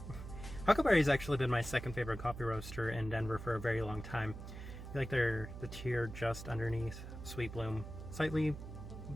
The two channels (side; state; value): right; noise; hum, 10 dB below the sound